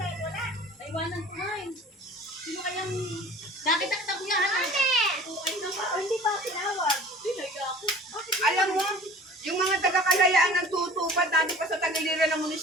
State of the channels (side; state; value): both; normal; correlation 0.44